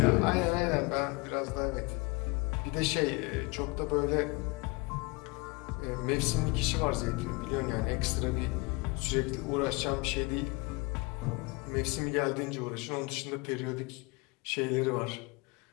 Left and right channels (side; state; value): right; quieter; 25.9 dB